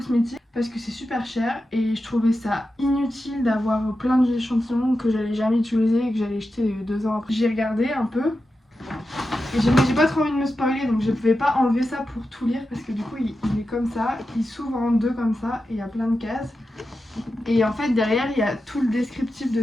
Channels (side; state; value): both; normal; correlation 0.90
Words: parce que c'est super cher et je trouvais ça inutile d'avoir plein d'échantillons que j'allais jamais utiliser et que j'allais jeter 2 ans après. J'ai regardé un peu Et j'ai pas trop envie de me spoiler, donc je pouvais pas enlever ça pour tout lire parce que du coup il est comme ça, il s'ouvre en deux comme ça et il y a plein de cases. Et en fait derrière il y a tout le descriptif de